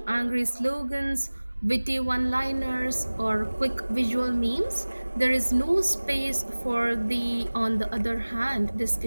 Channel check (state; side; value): inverted; both; correlation -1.00